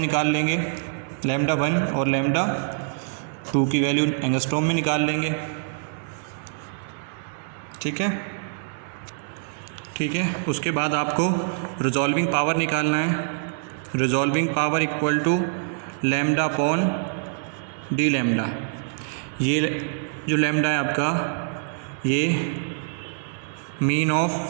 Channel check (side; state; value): left; silent; digital silence